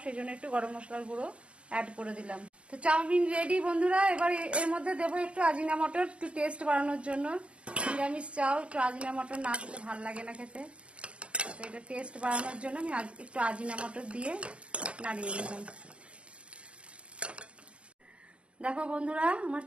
সেই জন্য একটু গরম মশলার গুঁড়ো অ্যাড করে দিলাম। তো চাউমিন রেডি বন্ধুরা। এবার এর মধ্যে দেবো একটু আজিনা মটর, একটু টেস্ট বাড়ানোর জন্য। নিরামিষ চাও একটু আজিনা মটর না দিলে ভালো লাগে না খেতে। তো এটা টেস্ট বাড়ানোর জন্য আমি একটু আজিনা মটর দিয়ে নাড়িয়ে নিলাম। দেখো বন্ধুরা, আমার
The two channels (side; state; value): left; late; 0.059 ms